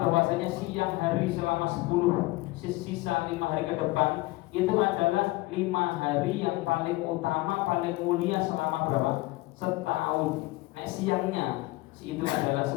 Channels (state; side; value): quieter; right; 20.8 dB